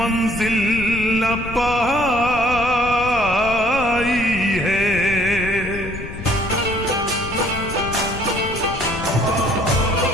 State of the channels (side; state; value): left; noise; rumble, 10 dB below the sound